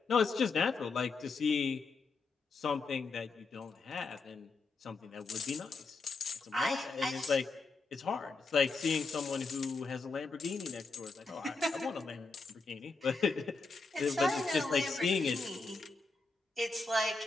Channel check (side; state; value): right; quieter; 4.0 dB